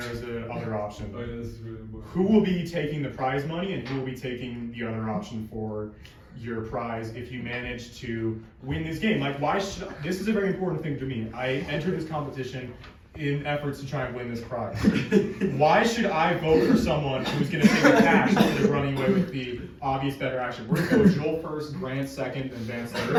is a other option. Oh, yeah, this is really important. Who will be taking the prize money, and who will be taking the other option for your prize if you manage to win this game? Like, why should this is a very important thing to me. I entered this competition in efforts to try and win this prize. Why should I vote for someone who's going to take the cash instead of running away with the obvious better action? We're going to go Joel first, Grant second, and Vance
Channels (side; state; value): both; identical; correlation 1.00